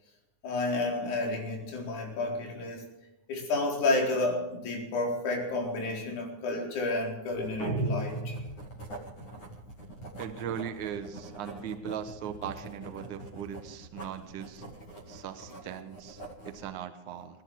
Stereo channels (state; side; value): late; right; 9.7 ms